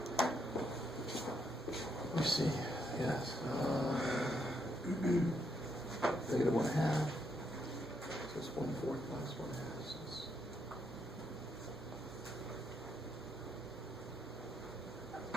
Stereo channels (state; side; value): normal; both; correlation 0.77